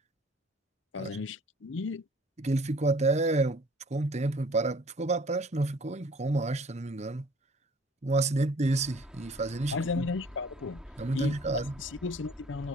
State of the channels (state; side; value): normal; both; correlation 0.53